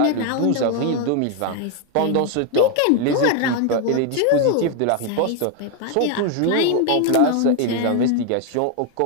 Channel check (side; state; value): both; different; correlation 0.01